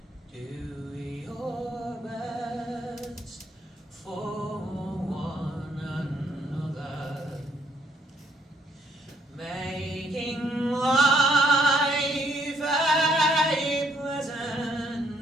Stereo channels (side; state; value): both; normal; correlation 0.68